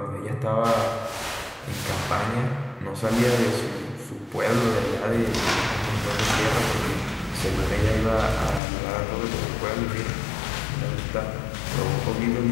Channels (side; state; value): right; drops out; at 8.6 s